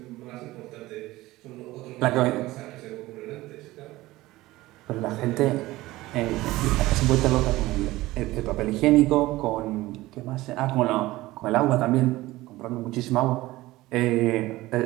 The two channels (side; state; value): left; quieter; 18.2 dB